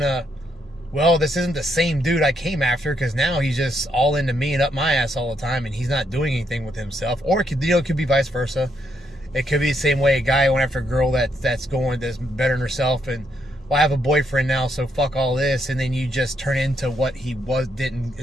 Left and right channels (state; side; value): normal; both; correlation 0.76